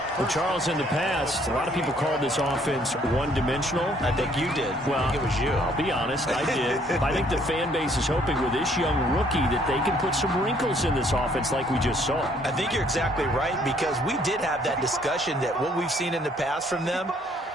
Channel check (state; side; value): normal; both; correlation 0.64